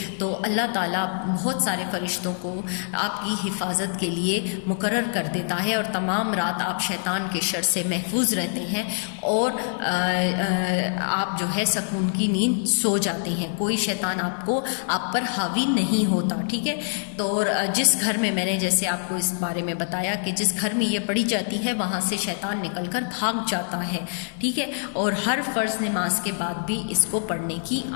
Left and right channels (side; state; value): right; silent; 58 dB below the other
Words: تو اللہ تعالیٰ بہت سارے فرشتوں کو آپ کی حفاظت کے لیے مقرر کر دیتا ہے اور تمام رات آپ شیطان کے شر سے محفوظ رہتے ہیں اور آپ جو ہے سکون کی نیند سو جاتے ہیں، کوئی شیطان آپ پر حاوی نہیں ہوتا، ٹھیک ہے۔ تو جس گھر میں نے جیسے آپ کو اس بارے میں بتایا کہ جس گھر میں یہ پڑھی جاتی ہے وہاں سے شیطان نکل کر بھاگ جاتا ہے، ٹھیک ہے، اور ہر فرض نماز کے بعد بھی اس کو پڑھنے کی